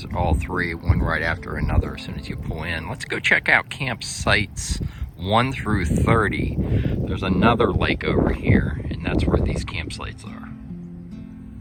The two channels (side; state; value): both; identical; correlation 1.00